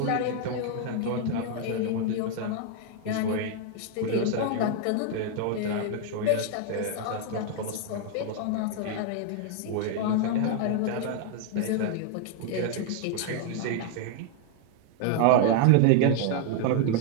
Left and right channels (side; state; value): both; different; correlation 0.00